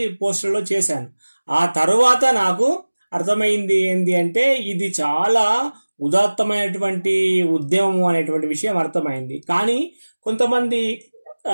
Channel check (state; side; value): inverted; both; correlation -1.00